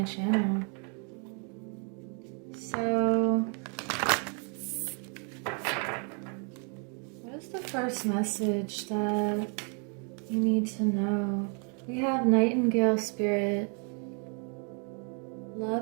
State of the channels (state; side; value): quieter; left; 39.7 dB